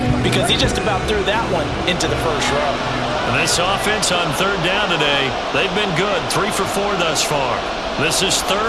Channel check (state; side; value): identical; both; correlation 1.00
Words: because he just about threw that one into the first row. A nice offense on 3rd down today. They've been good, 3 for 4 thus far. This is